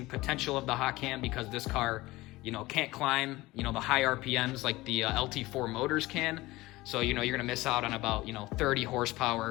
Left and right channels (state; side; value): quieter; right; 19.5 dB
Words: potential of the hot cam because this car, you know, can't climb, you know, the high RPMs like the LT4 motors can. So, you know, you're gonna miss out on about, you know, 30